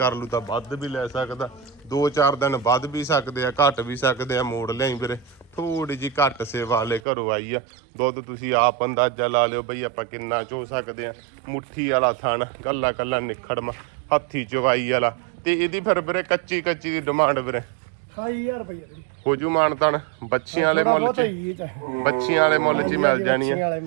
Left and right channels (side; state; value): left; drops out; at 7.0 s